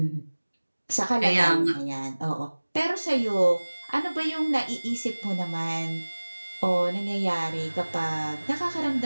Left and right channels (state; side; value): inverted; both; correlation -1.00